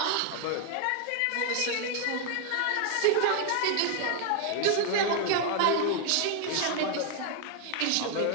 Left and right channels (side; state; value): both; different; correlation 0.01